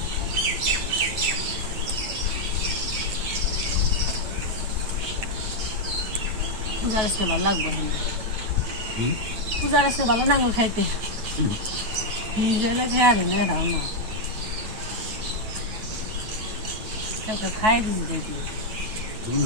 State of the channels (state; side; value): late; left; 9.2 ms